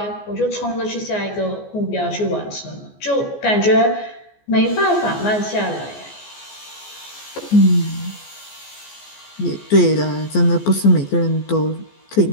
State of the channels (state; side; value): late; right; 14 ms